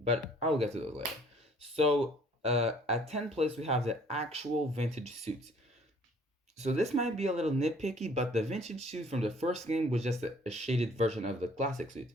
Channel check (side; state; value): both; normal; correlation 0.57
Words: I'll get to those later. So at 10th place, we have the actual vintage suits. So this might be a little nitpicky, but the vintage suit from the first game was just a shaded version of the classic suit